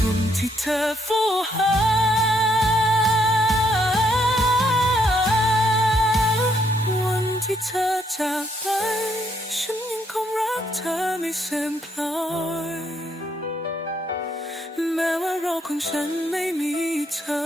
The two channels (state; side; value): normal; both; correlation 0.73